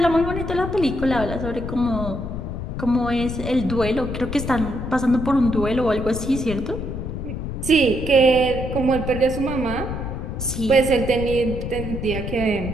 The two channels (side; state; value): left; noise; rumble, 5 dB below the sound